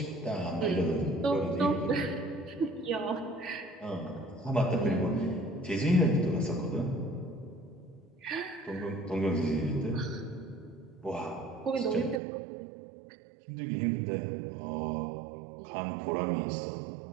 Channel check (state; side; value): drops out; left; at 12.2 s